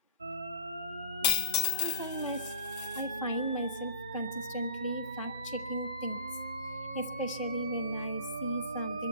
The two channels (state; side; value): inverted; both; correlation -0.45